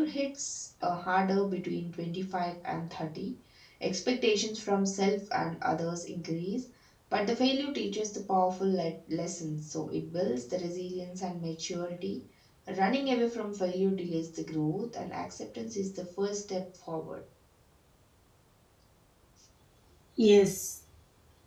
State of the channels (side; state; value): both; identical; correlation 1.00